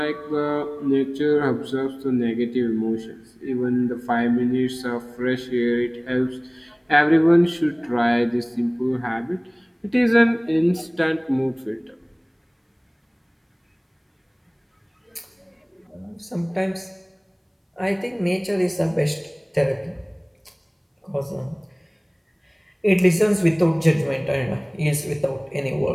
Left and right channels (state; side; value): identical; both; correlation 1.00